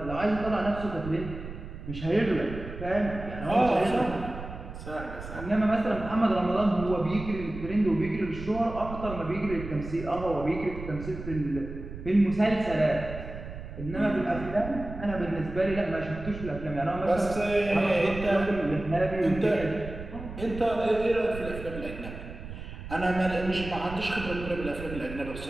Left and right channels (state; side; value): noise; right; rumble, 10 dB below the sound